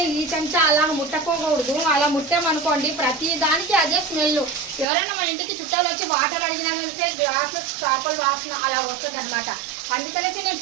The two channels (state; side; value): drops out; left; at 4.9 s